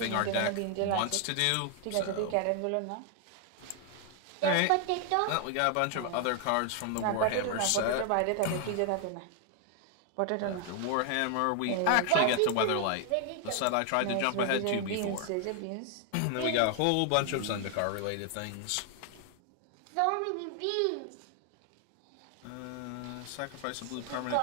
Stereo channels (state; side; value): different; both; correlation 0.00